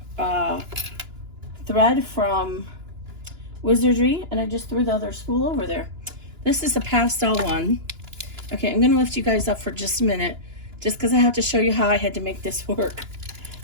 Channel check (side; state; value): left; late; 2.9 ms